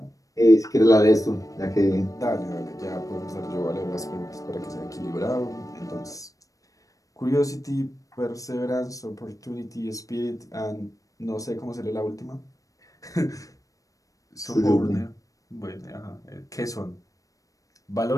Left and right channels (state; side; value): late; right; 0.16 ms